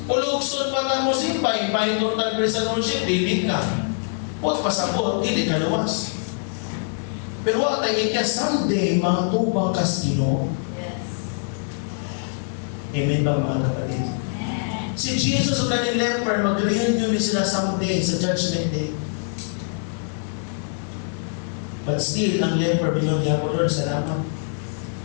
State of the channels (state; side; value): silent; right; 63 dB below the other